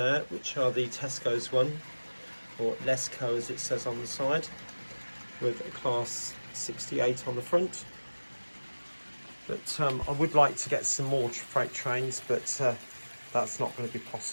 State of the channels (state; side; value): inverted; both; correlation -1.00